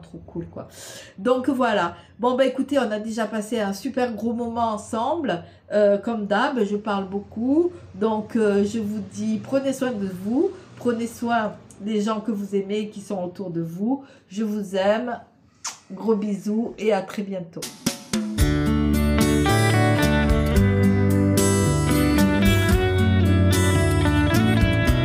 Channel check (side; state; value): both; identical; correlation 1.00